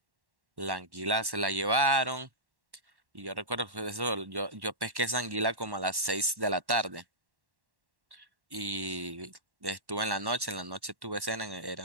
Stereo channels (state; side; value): late; left; 1.1 ms